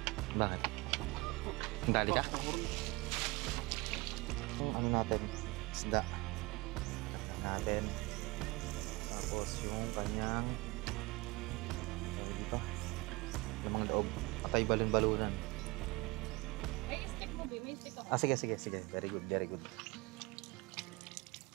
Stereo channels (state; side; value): quieter; left; 24.1 dB